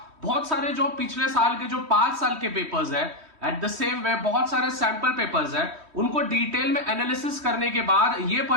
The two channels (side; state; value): left; late; 3.1 ms